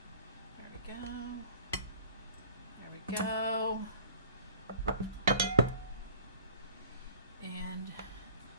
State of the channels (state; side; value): inverted; both; correlation -0.49